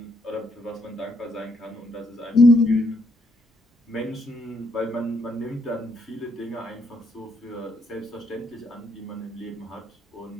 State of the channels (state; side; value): normal; both; correlation 0.73